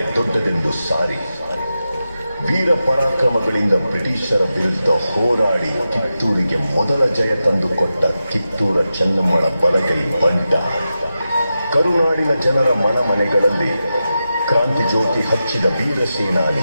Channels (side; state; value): both; inverted; correlation -0.91